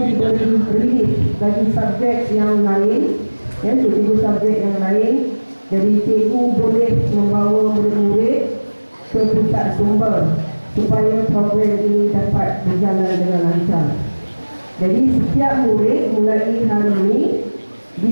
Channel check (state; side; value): inverted; both; correlation -1.00